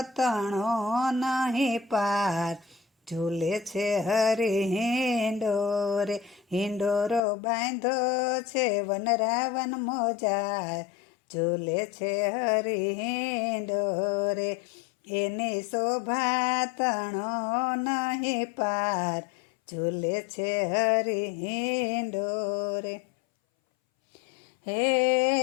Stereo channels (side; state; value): right; drops out; at 7.2 s